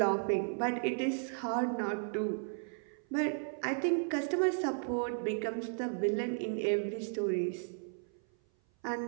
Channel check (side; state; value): left; silent; 55 dB below the other